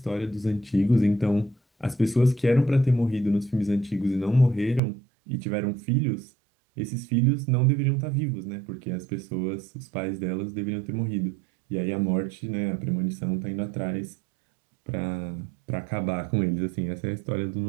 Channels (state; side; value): drops out; left; at 4.8 s